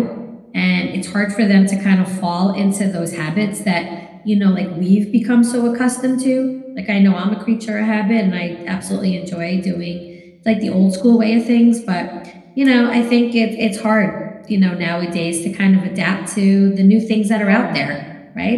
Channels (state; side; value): identical; both; correlation 1.00